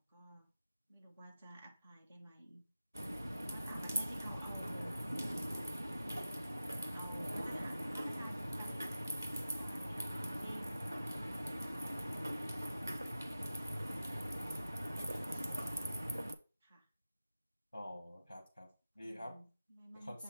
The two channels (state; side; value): inverted; both; correlation -0.94